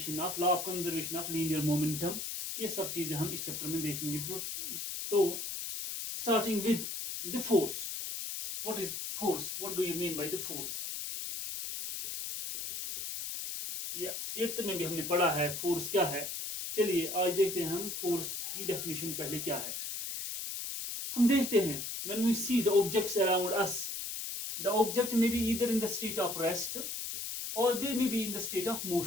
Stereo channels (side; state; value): left; noise; hiss, 5 dB below the sound